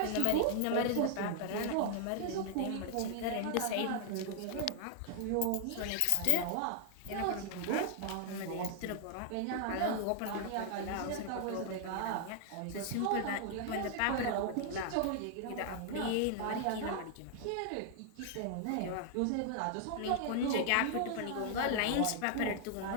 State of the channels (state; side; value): different; both; correlation 0.00